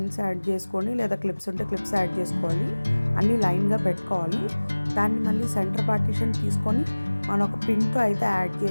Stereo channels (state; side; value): inverted; both; correlation -1.00